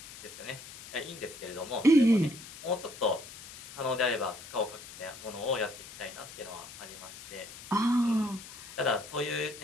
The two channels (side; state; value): left; noise; hiss, 15 dB below the sound